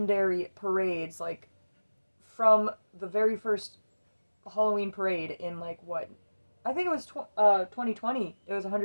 parades, from the very first Halloween parade in what? I think it was 2020. It was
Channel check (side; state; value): both; inverted; correlation -1.00